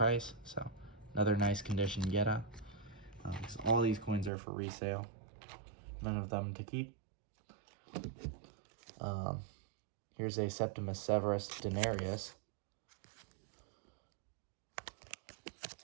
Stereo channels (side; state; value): left; drops out; at 4.3 s